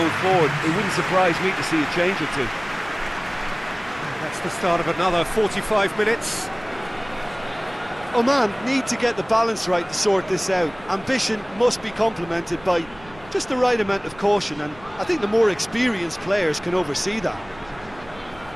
forward. It wouldn't surprise me to see a change or two. That's the start of another 45 minutes. Oman need to get the balance right to sort this out. Ambition must be complemented by just the right amount of caution, and I think the more experienced players can oversee that.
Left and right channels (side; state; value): right; noise; rumble, 21 dB below the sound